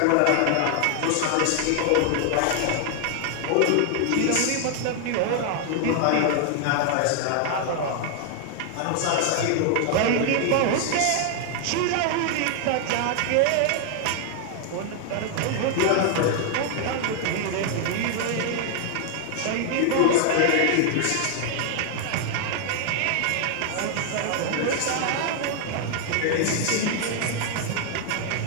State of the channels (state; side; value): different; both; correlation 0.00